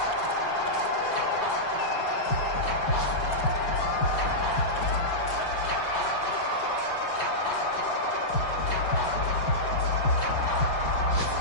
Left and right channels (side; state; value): right; late; 5.3 ms